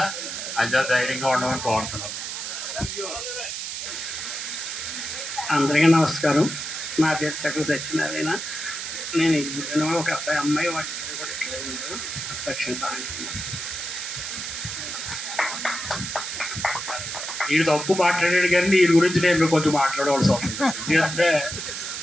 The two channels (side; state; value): right; noise; hiss, 5 dB below the sound